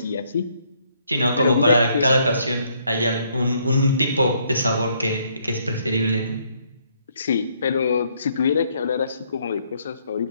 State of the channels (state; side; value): inverted; both; correlation -0.69